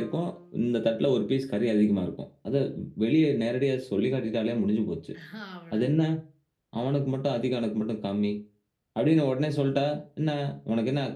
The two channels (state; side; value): identical; both; correlation 1.00